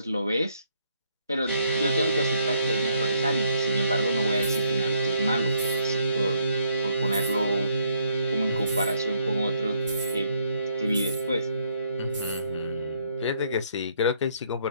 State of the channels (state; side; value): inverted; both; correlation -0.71